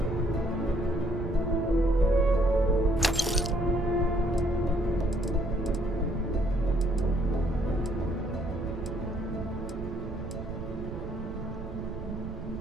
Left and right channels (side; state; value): right; noise; rumble, 8 dB below the sound